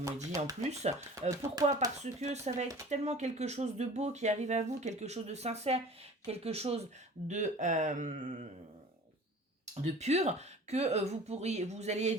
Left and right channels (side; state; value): both; normal; correlation 0.43